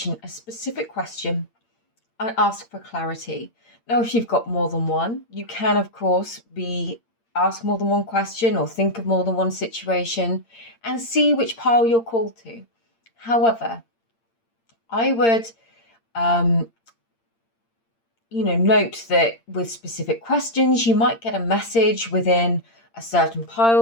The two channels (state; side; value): late; right; 8.7 ms